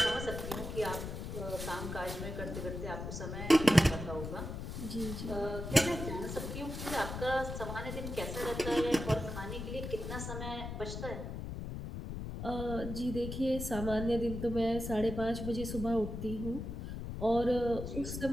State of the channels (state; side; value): noise; left; rumble, 6 dB below the sound